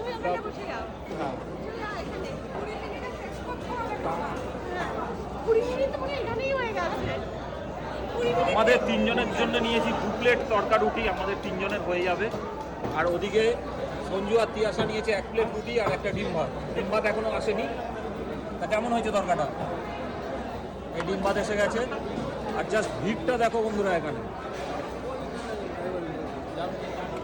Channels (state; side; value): identical; both; correlation 1.00